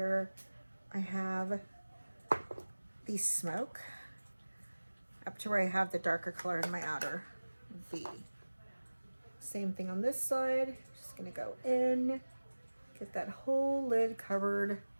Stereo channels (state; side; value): inverted; both; correlation -1.00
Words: I have the smoke, up to where I have the darker color in my outer V. Same thing on this side. Just gonna go in, get that whole lid covered.